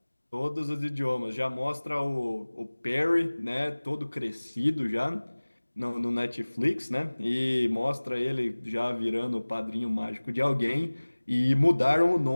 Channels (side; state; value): both; inverted; correlation -1.00